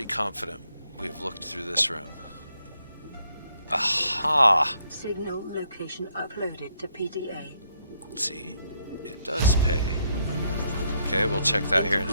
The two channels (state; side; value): inverted; both; correlation -0.73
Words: confident we've looked through this room. Aha! Signal location uploaded to PDA. See? It does pay. Okay, we'll check that here in